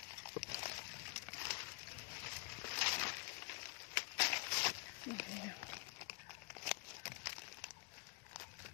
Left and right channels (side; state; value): right; quieter; 29.5 dB